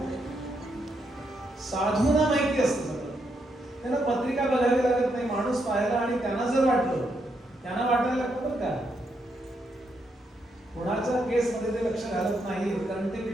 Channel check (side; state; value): both; normal; correlation 0.79